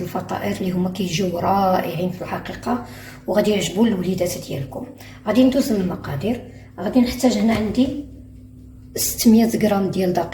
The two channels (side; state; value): both; identical; correlation 1.00